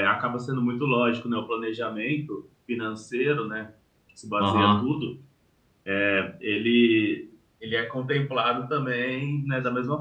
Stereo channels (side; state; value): both; identical; correlation 1.00